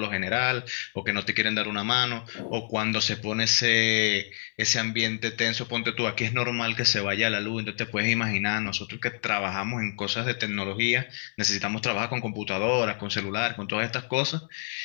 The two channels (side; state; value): right; silent; 58 dB below the other